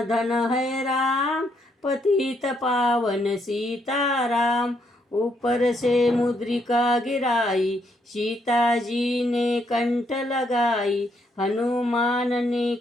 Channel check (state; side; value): normal; both; correlation 0.74